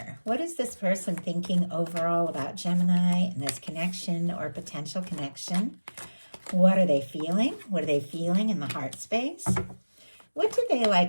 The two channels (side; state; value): both; inverted; correlation -1.00